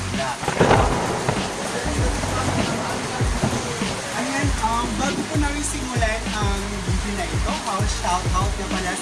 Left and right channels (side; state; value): both; identical; correlation 1.00